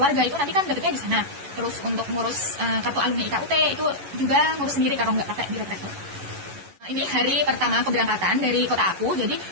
itu nanti kan dapetnya di sana. Terus untuk ngurus kartu alumni IKUT itu juga ngurus sendiri kalau nggak pakai biro travel. Ini hari pertama keberangkatan dari kota aku. Jadi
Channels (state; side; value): late; left; 11 ms